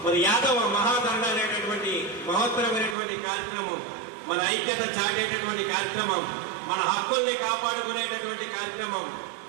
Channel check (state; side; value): drops out; left; at 3.0 s